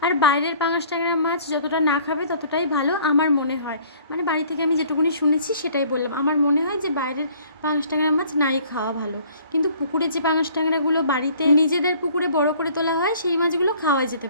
আর বাইরের পাঙাশ ট্যাংরা মাছ যতটা না খাবে ততটাই ভালো আমার মনে হয়। মানে বাড়ি থেকে আমি যেটুকুনি শুনেছি সেটাই বললাম। আমার মনে হয় যে বাইরের পাঙাশ ট্যাংরা মাছ নাই খাওয়া ভালো, কিন্তু পুকুরে যে পাঙাশ ট্যাংরাগুলো বাড়িতে নিজেদের পুকুরে বড় করে তোলা হয় সেই মাছগুলো খাওয়া যেতে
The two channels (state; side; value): inverted; both; correlation -0.55